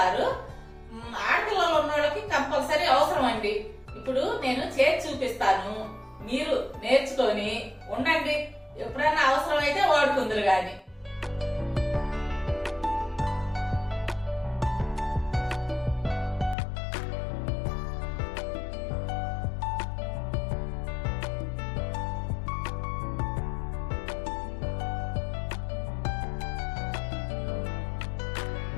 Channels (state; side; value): drops out; right; at 16.6 s